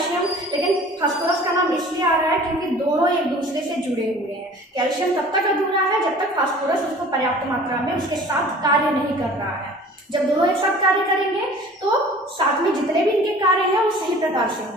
लेकिन फास्फोरस का नाम इसलिए आ रहा है क्योंकि दोनों एक दूसरे से जुड़े हुए हैं। कैल्शियम तब तक अधूरा है जब तक फास्फोरस उसको पर्याप्त मात्रा में उसके साथ कार्य नहीं कर रहा है। जब दोनों एक साथ कार्य करेंगे तो साथ में जितने भी इनके कार्य हैं वो सही प्रकार से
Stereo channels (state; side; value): normal; both; correlation 0.46